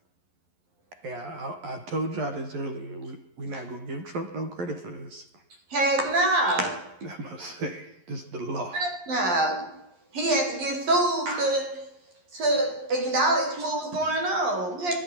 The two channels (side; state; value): left; late; 11 ms